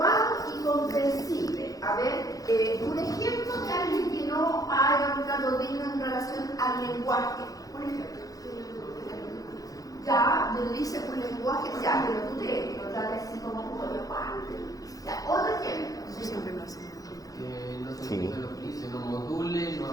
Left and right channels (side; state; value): right; late; 0.17 ms